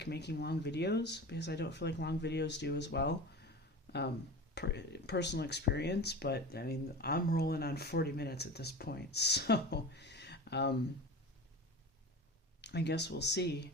making long videos, because I don't feel like long videos do as well. Personal experience, but I mean, I'm rolling on 40 minutes at this point, so I guess we'll see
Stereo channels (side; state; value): both; normal; correlation 0.31